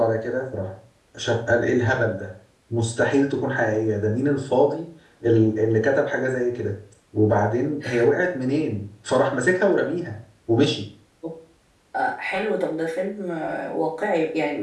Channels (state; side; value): identical; both; correlation 1.00